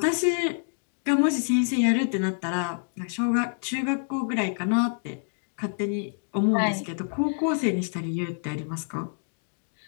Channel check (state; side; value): silent; right; digital silence